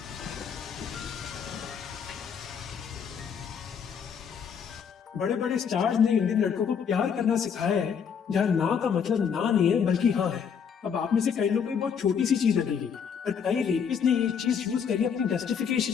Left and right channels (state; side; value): quieter; right; 7.1 dB